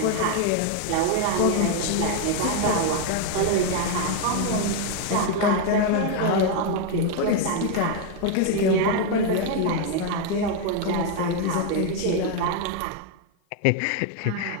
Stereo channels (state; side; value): different; both; correlation 0.01